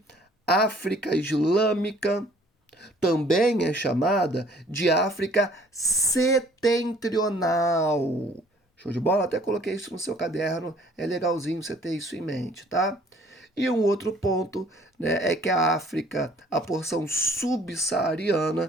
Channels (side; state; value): both; normal; correlation 0.57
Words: África Islâmica, também é chamada de África Setentrional. Show de bola? Até coloquei isso no seu caderno, é legalzinho você ter isso em mente, tá? E um outro ponto, né, é que a África, a porção